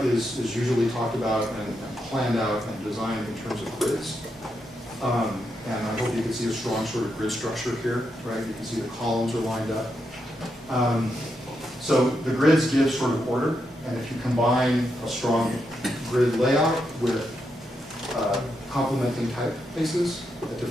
is usually talked about and planned out and designed in terms of grids. And I hope you can see a strong sort of grid structure here, right? You can see the columns are lined up. So the grids give sort of order, and if you combine a strong grid layout with complementing typefaces at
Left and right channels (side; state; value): both; normal; correlation 0.83